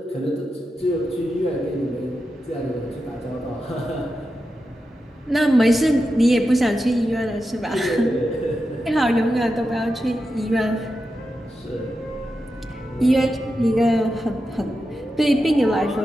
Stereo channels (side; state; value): both; normal; correlation 0.89